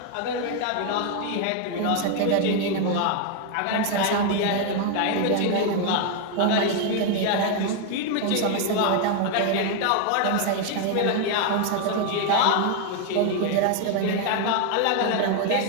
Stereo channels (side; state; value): both; different; correlation 0.01